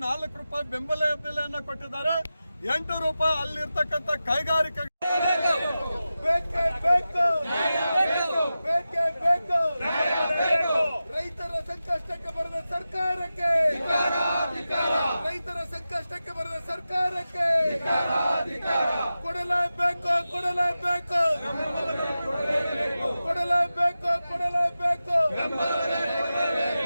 4 ರೂಪಾಯಿ ಬೆಂಬಲ ಬೆಲೆಯನ್ನು ಕೊಟ್ಟಿದ್ದಾರೆ. 8 ರೂಪಾಯಿ ಅಲ್ಲಿರ್ತಕ್ಕಂಥ ಕೈಗಾರಿಕೆ ರೈತರ ಸಂಕಷ್ಟಕ್ಕೆ ಬರದ ಸರ್ಕಾರಕ್ಕೆ, ರೈತರ ಸಂಕಷ್ಟಕ್ಕೆ ಬರದ ಸರ್ಕಾರಕ್ಕೆ ಕೊಡಲೇಬೇಕು, ಕೊಡಲೇಬೇಕು, ಕೊಡಲೇಬೇಕು, ಕೊಡಲೇಬೇಕು.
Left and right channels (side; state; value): both; inverted; correlation -0.93